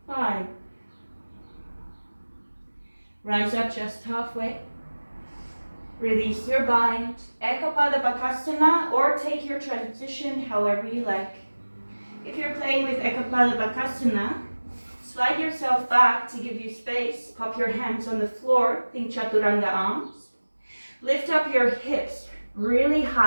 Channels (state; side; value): inverted; both; correlation -1.00